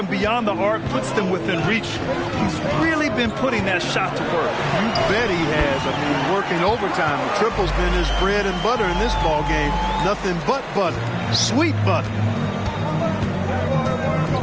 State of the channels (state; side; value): identical; both; correlation 1.00